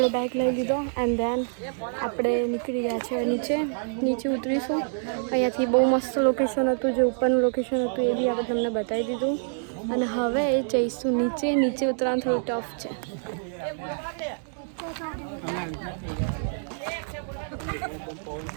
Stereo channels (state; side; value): silent; left; digital silence